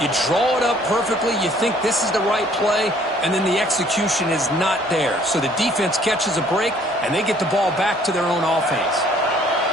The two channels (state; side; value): normal; both; correlation 0.59